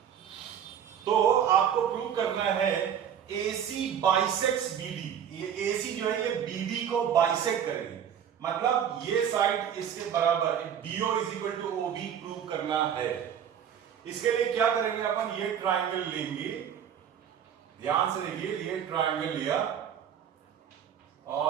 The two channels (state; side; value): quieter; left; 8.8 dB